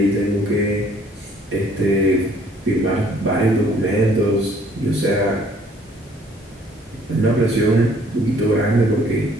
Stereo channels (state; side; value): normal; both; correlation 0.59